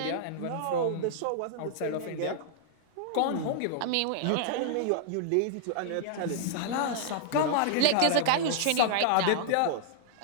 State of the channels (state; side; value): different; both; correlation -0.01